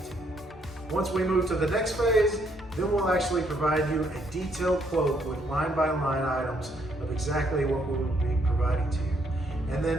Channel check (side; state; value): both; normal; correlation 0.71